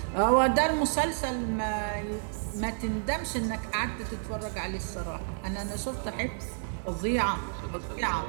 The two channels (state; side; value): silent; left; digital silence